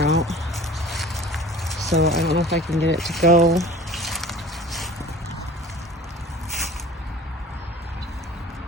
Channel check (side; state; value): both; normal; correlation 0.43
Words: out. So I don't know if I can get it to go.